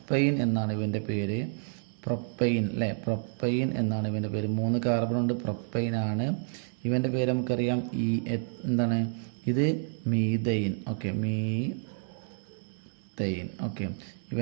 എന്നാണ് ഇവൻ്റെ പേര്. പ്രൊപ്പൈൻ അല്ലേ, പ്രൊപ്പൈൻ എന്നാണ് ഇവൻ്റെ പേര്. 3 കാർബൺ ഉണ്ട്, പ്രൊപ്പൈൻ ആണ് ഇവൻ്റെ പേര്. നമുക്കറിയാം എന്താണ് ഇത്? മീഥൈൻ. Okay, methane. ഓക്കെ,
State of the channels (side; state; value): left; silent; 58 dB below the other